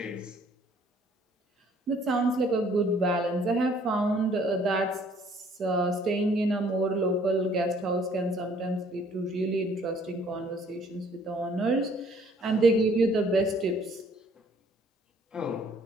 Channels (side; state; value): both; normal; correlation 0.60